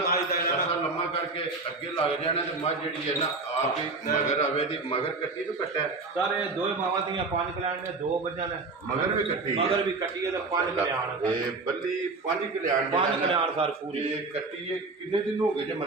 ਦਾ ਤਰਸਾ ਲੰਮਾ ਕਰਕੇ ਅੱਗੇ ਲੱਗ ਜਾਣਾ ਤੇ ਮੱਝ ਜਿਹੜੀ ਹੈ ਨਾ ਆਪ ਹੀ ਮਗਰ ਆਵੇ ਦੀ ਮਗਰ ਕੱਟੀ ਤੋਂ ਕੱਟਿਆ ਸਾਰੇ ਦੋਏ ਮਾਵਾਂ ਦੀਆਂ 5 ਕਲਿਆਣ ਨੇ 2 ਮੱਝਾਂ ਨੇ ਮਗਰ ਵੀ ਕੱਟੀ ਮਗਰ ਵੀ ਕੱਟੀ ਹੈ ਤੇ 5 ਕਲਿਆਣ ਇਹ ਬੱਲੀ 5 ਕਲਿਆਣ 5 ਕਲਿਆਣ ਸਰ ਪੂਰੀ ਇਹ ਕੱਟੀ ਇਹ ਕਿੰਨੇ ਦਿਨ ਹੋ ਗਏ ਜੇ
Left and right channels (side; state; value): left; quieter; 3.8 dB